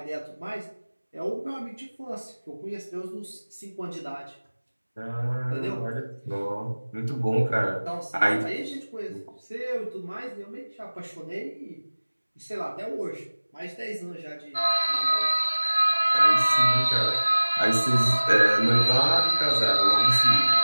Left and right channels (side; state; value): both; inverted; correlation -1.00